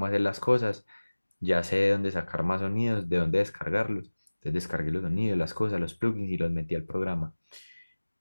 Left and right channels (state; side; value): inverted; both; correlation -1.00